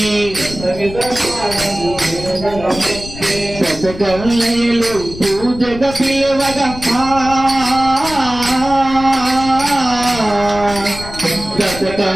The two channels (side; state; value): left; noise; rumble, 12 dB below the sound